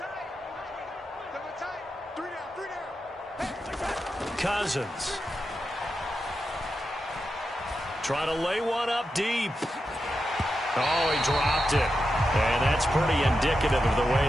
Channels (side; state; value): both; normal; correlation 0.88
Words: Cousins. Trying to lay one up deep. Oh, he dropped it. And that's pretty indicative of the way